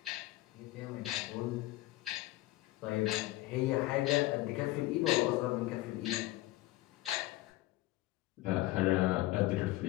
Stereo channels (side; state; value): right; quieter; 17.7 dB